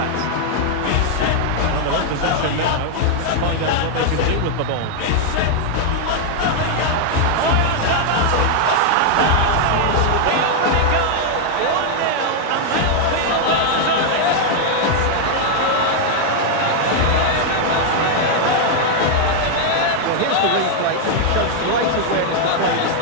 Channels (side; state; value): both; different; correlation 0.00